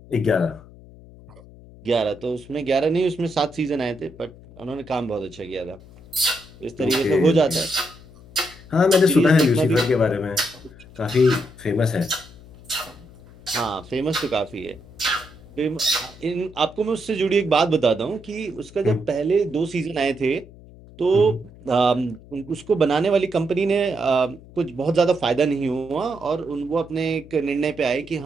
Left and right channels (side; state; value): left; noise; hum, 21 dB below the sound